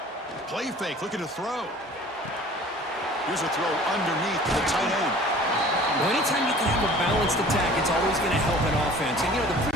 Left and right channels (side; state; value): both; normal; correlation 0.47